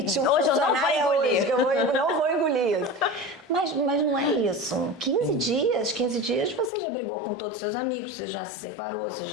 um funcionário hoje, que eu não vou engolir isso. Mas não é isso. 15 dias você já brigou com todos os seus amigos, você já se separou, você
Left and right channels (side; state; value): right; drops out; at 6.7 s